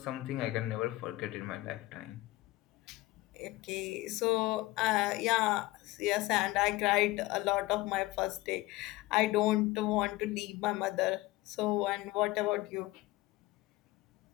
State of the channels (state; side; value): quieter; right; 19.3 dB